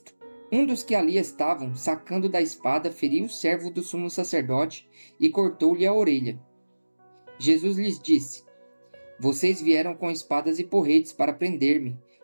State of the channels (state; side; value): inverted; both; correlation -1.00